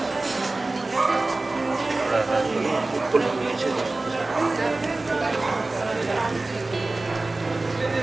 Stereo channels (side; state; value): left; quieter; 3.1 dB